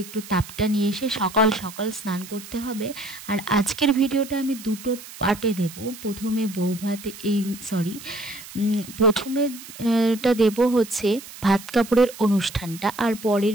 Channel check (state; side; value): noise; right; hiss, 15 dB below the sound